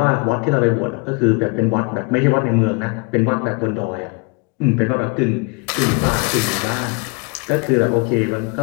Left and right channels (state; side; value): quieter; right; 31.4 dB